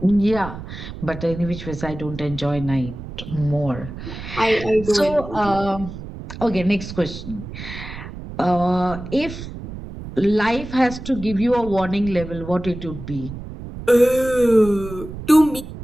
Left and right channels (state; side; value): noise; right; rumble, 11 dB below the sound